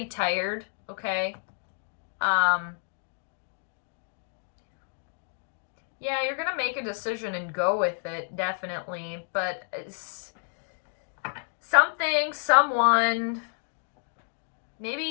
tired, okay, yeah, you're gonna make a decision and go with it, definitely, but someone,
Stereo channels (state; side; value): silent; right; digital silence